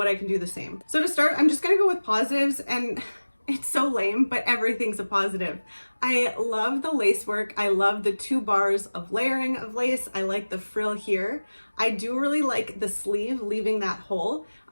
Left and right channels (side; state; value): both; inverted; correlation -1.00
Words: I can do the same. So to start, I'm just gonna go with positives, and it's so lame, but everything's a positive. I love the lace work. I love the 2 bars of layering of lace. I like the frill here. I do really like the sleeve, leaving that hole.